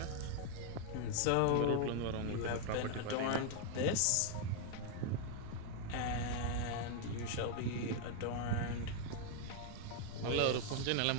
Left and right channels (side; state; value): both; different; correlation 0.00